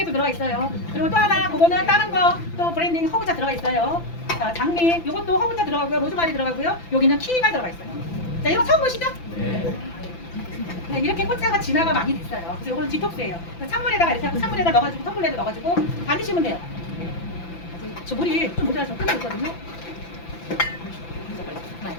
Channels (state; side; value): late; right; 5.9 ms